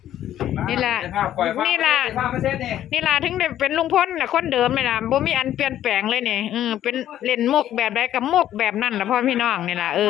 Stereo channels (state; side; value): quieter; right; 11.8 dB